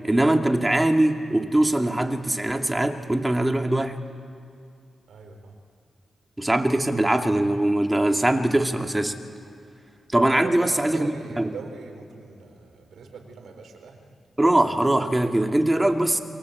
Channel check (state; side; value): normal; both; correlation 0.98